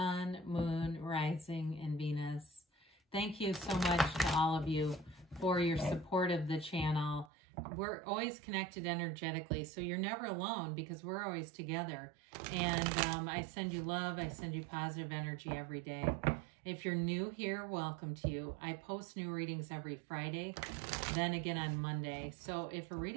Moon, Rising, and Venus. Thank you so much to all of you for your support of the channel. We're always connected energetically, so you're never alone because we're always together. And I send you love, I send you positive energy every day. If you're new here, welcome to you. I post new readings every Friday, then again on Monday. So if a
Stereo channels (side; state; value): left; drops out; at 7.3 s